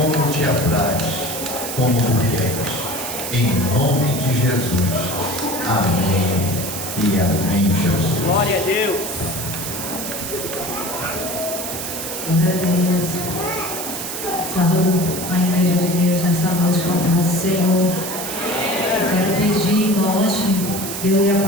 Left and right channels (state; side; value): noise; right; hiss, 6 dB below the sound